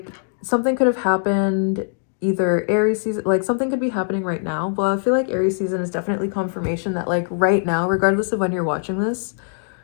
something could have happened either Aries season, like something could be happening right now. Well, I feel like Aries season is definitely confirmation that like right now, regardless of when you're watching this,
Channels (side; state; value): right; silent; digital silence